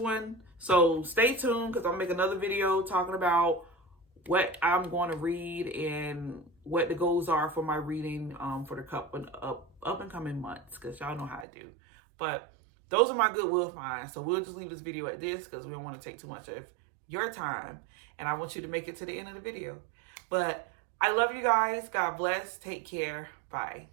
So stay tuned because I'll make another video talking about what I'm going to read and what the goals are for my reading for the up and coming months, because y'all know how I do. But those are my goodwill finds. So we'll just leave this video at this because we don't want to take too much of your time. And I want you to make it to the end of the video. But I love you guys. God bless. Take care. Bye.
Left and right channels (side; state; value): left; drops out; at 11.5 s